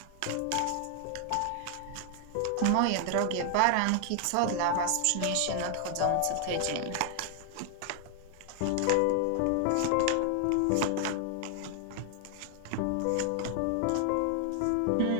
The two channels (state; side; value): different; both; correlation 0.00